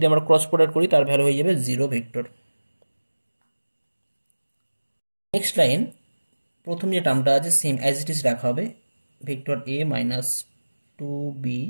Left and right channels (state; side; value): inverted; both; correlation -1.00